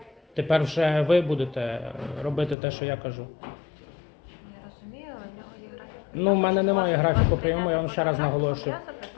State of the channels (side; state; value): right; drops out; at 2.6 s